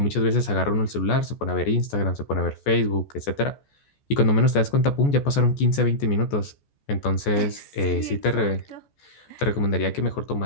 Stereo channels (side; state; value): right; late; 14 ms